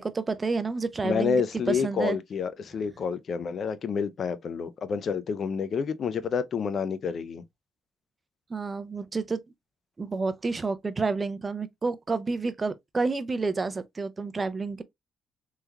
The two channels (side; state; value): both; normal; correlation 0.78